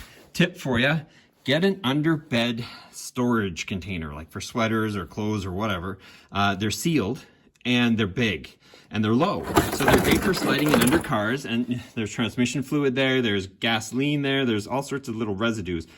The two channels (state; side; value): identical; both; correlation 1.00